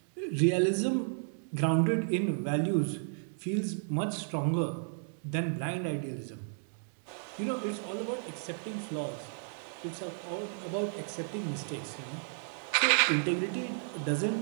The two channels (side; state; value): left; silent; digital silence